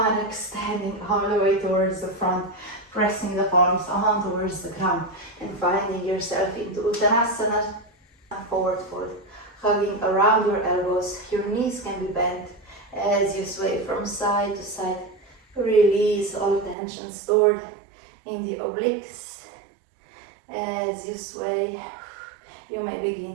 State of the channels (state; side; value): drops out; left; at 16.8 s